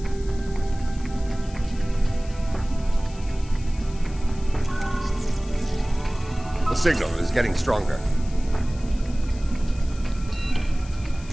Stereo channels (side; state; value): left; noise; hiss, 21 dB below the sound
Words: The signal is getting stronger.